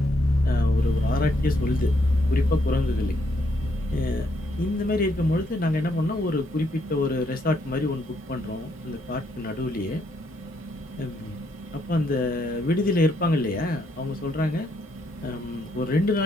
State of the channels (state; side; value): normal; both; correlation 0.74